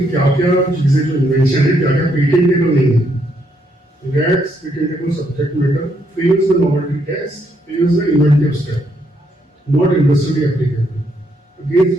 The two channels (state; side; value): normal; both; correlation 0.74